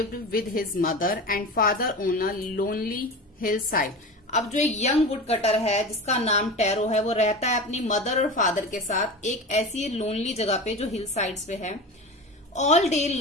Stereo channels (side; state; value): both; normal; correlation 0.29